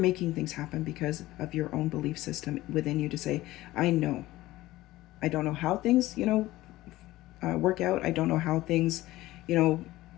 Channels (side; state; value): right; quieter; 17.1 dB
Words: things happen because of your own belief system within you to say, I know. I don't know how things, work out. I don't know how things,